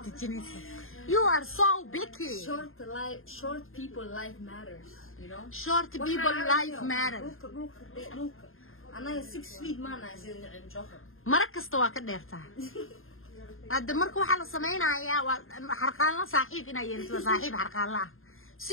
dejinaysaa you are so picky short people life matters you know short people life matters look anaga 6 feet maana aysan nicin joker mara kasta waa ka dheertaa hadda marka waxa la sameynayaa waa xarqaan la saaxiib inay yeelto saaxiib xarqaan la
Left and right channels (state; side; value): late; right; 0.60 ms